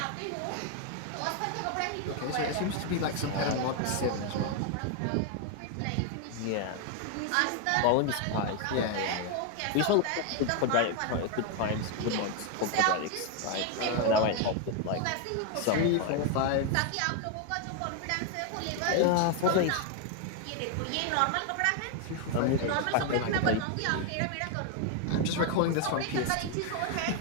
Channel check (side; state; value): both; different; correlation 0.01